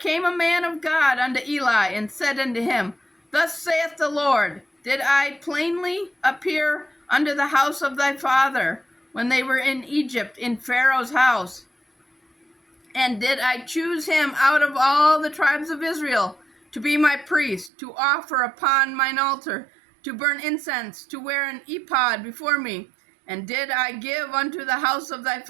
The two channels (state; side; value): drops out; left; at 17.7 s